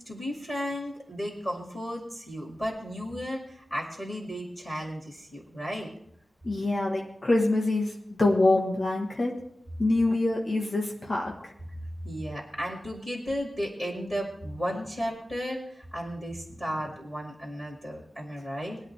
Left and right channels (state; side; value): normal; both; correlation 0.94